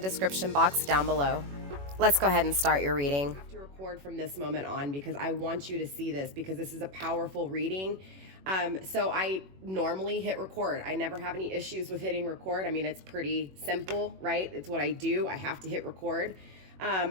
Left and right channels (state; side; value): late; left; 21 ms